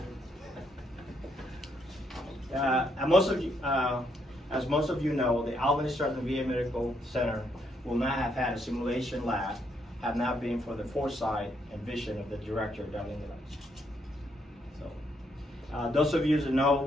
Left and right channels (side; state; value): both; normal; correlation 0.75